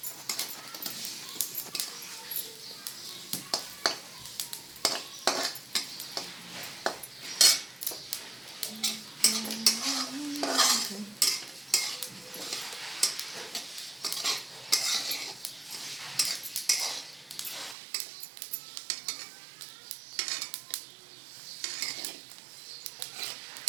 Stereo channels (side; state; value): left; drops out; at 17.8 s